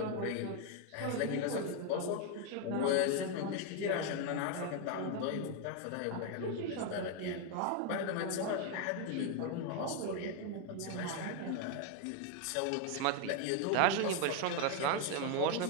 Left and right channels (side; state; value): both; different; correlation 0.01